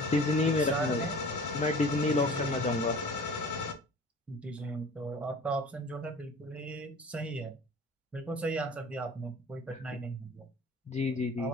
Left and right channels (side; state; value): both; normal; correlation 0.43